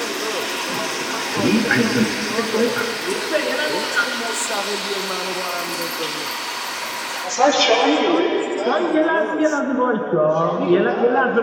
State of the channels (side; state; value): both; identical; correlation 1.00